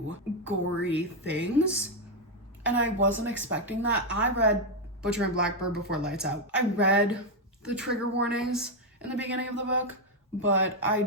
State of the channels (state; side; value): normal; both; correlation 0.03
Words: gory things. And I wasn't expecting that. I read Butcher and Blackbird before Lights Out. I read the trigger warnings in the beginning of the book, but I